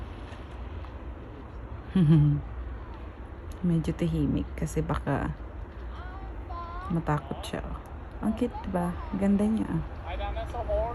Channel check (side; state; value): both; identical; correlation 1.00